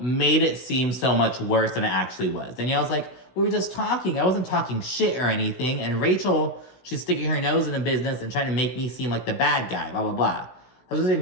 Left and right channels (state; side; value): late; right; 16 ms